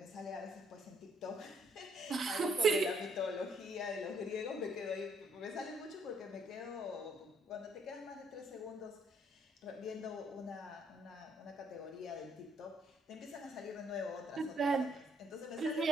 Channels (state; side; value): normal; both; correlation 0.68